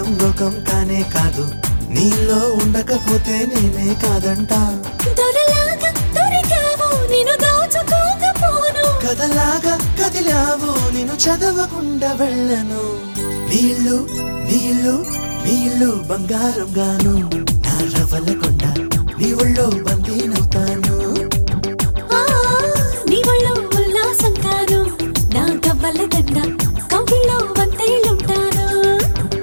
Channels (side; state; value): both; inverted; correlation -1.00